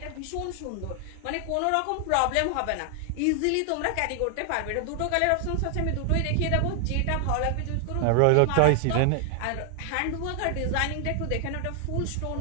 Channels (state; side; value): different; both; correlation 0.00